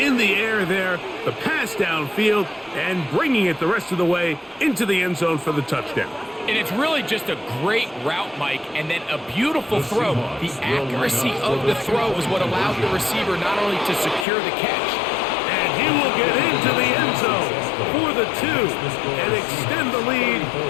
the air there, the pass downfield, and bringing it the rest of the way into the end zone for the touchdown. And it's really just a great route, Mike, and then a beautiful throw. The accuracy of the throw is what allowed the receiver not only to secure the catch. And he will get into the end zone for the 2 and extend the lead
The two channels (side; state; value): right; drops out; at 14.2 s